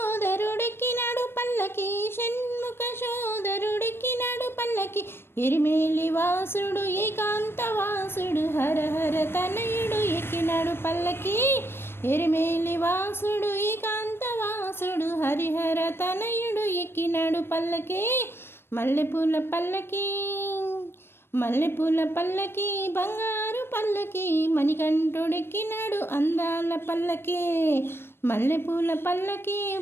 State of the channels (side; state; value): right; late; 0.11 ms